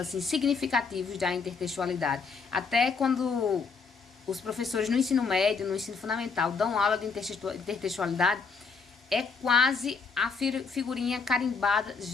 significativos da intertextualidade. Até quando os professores no ensino médio, no ensino fundamental, dão aula de intertextualidade, é quase a figurinha carimbada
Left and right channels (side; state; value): right; quieter; 5.0 dB